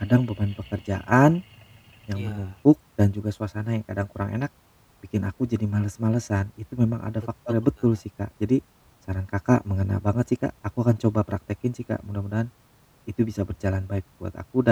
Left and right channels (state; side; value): identical; both; correlation 1.00